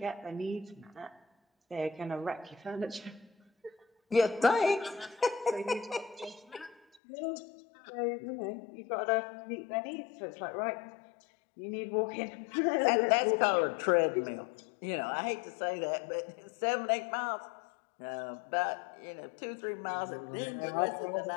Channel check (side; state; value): right; drops out; at 7.0 s